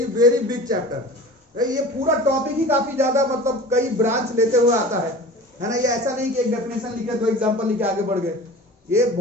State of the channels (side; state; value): both; normal; correlation 0.38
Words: very big chapter. ये पूरा टॉपिक ही काफी ज्यादा, मतलब कई ब्रांच लेते हुए आता है ना। ये ऐसा नहीं कि एक डेफिनेशन लिखे दो एग्जांपल लिखे आगे बढ़ गए, ये